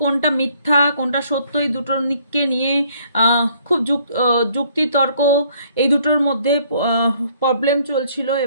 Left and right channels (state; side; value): inverted; both; correlation -0.63